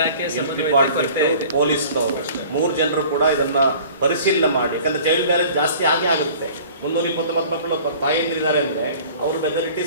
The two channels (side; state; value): both; inverted; correlation -0.47